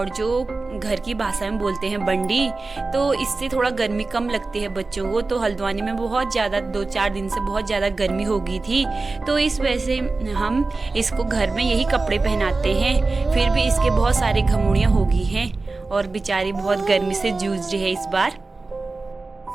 जो घर की भाषा में बोलते हैं बंडी। तो इससे थोड़ा गर्मी कम लगती है बच्चों को। तो हल्द्वानी में बहुत ज़्यादा 2-4 दिन से बहुत ज़्यादा गर्मी हो गई थी, तो इस वजह से हम इसको घर में यही कपड़े पहनाते हैं। फिर भी इसके बहुत सारे घमोड़ियाँ हो गई हैं और बेचारी बहुत गर्मी से जूझ रही है इस बार।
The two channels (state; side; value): quieter; left; 3.6 dB